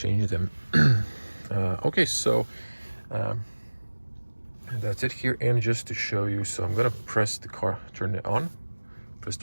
them. Okay, so that's it here. And just to show you, so I'm gonna press the car, turn it on, press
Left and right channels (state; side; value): inverted; both; correlation -1.00